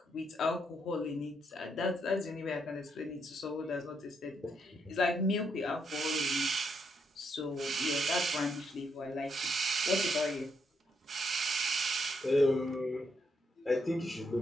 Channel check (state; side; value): normal; both; correlation 0.77